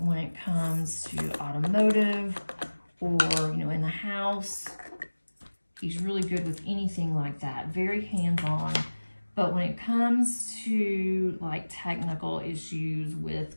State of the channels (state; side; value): inverted; both; correlation -1.00